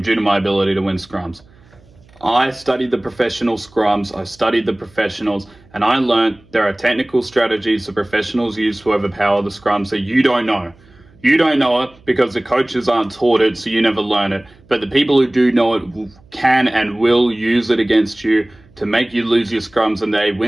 due to my ability to win scrums. I studied the professional scrums, I studied the professionals, and I learned there are technical strategies the professionals use to overpower the scrums that you don't know. You don't know it because the coaches aren't taught it, so you never learn it. But the people who do know it can and will use it against you to make you lose your scrums and they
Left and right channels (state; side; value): noise; right; hum, 28 dB below the sound